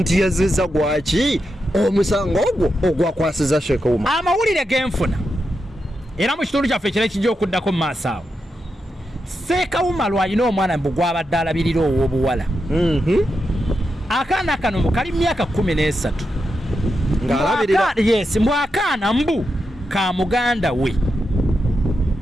yazizza gwaki omusango ogwo ogwakwasiza Seka Umar. Amawulire genfuna era mu kitundu kyaffe ekira ekijja okuddako mu maaso awo Seka Umar alina omwana mbu gwabadde alabirira ow'obuwala akaana kano kali myaka 13 ng'alabirira mbu akaana mbu ka muganda we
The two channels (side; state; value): both; normal; correlation 0.87